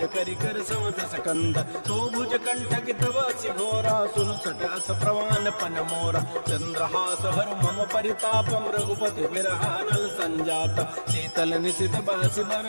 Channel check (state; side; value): inverted; both; correlation -1.00